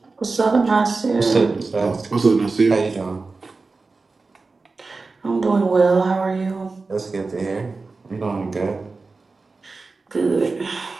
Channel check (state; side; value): quieter; left; 3.9 dB